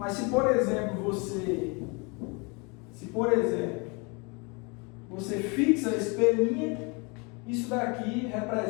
se, por exemplo, você fixa esse P', isso daqui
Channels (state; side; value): quieter; right; 30.4 dB